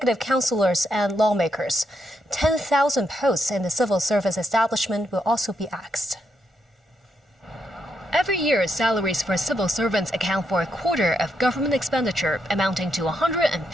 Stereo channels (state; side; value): normal; both; correlation 0.80